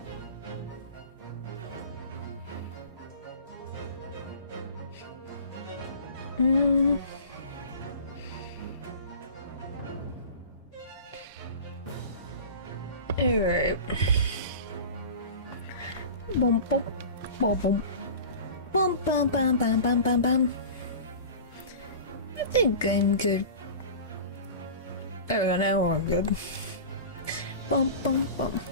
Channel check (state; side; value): inverted; both; correlation -0.36